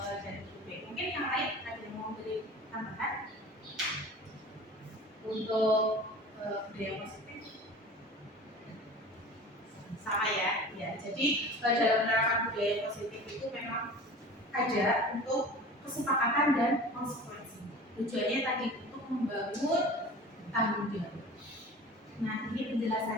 Bupik. Mungkin yang lain ada yang mau beri tambahan untuk budaya positif? Sama ya, ya. Jadi dalam penerapan budaya positif itu memang ada untuk kesepakatan dan konsekuensi. Tujuannya tadi untuk membangun tanggung jawab. Nah, ini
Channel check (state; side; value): normal; both; correlation 0.39